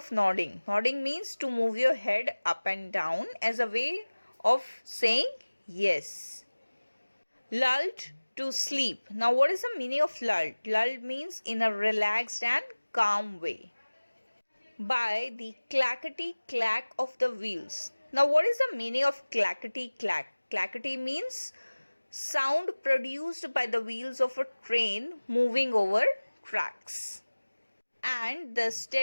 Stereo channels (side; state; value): both; inverted; correlation -1.00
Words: nodding? Nodding means to move your head up and down as a way of saying yes. Lulled to sleep. Now what is the meaning of lulled? Lulled means in a relaxed and calm way. By the clackety clack of the wheels. Now what is the meaning of clackety clack? Clackety means sound produced by the wheels of a train moving over tracks and the